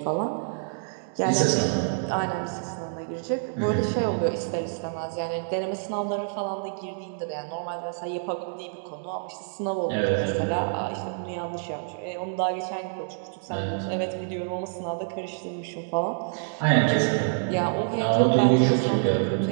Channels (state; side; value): silent; left; digital silence